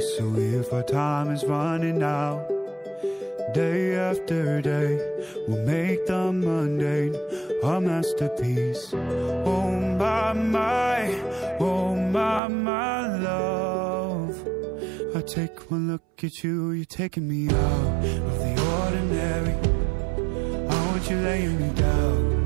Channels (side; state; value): left; drops out; at 12.4 s